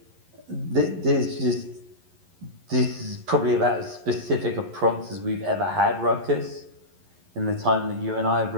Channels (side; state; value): left; late; 11 ms